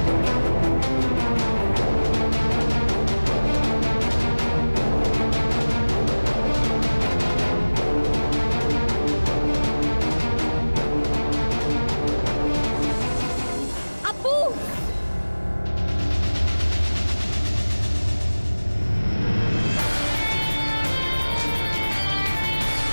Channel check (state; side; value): inverted; both; correlation -1.00